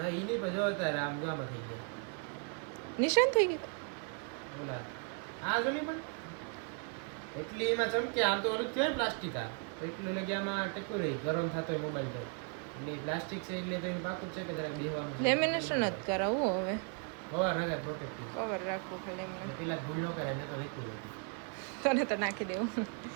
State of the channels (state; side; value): quieter; left; 39.5 dB